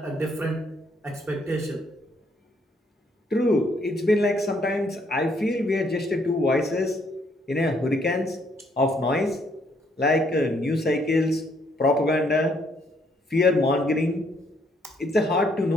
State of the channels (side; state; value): both; normal; correlation 0.69